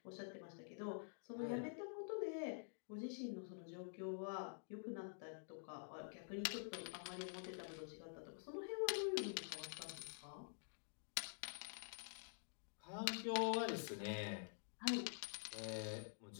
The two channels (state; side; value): silent; right; digital silence